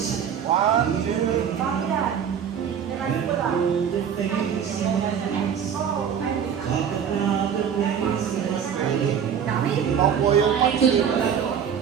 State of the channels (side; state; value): left; quieter; 8.1 dB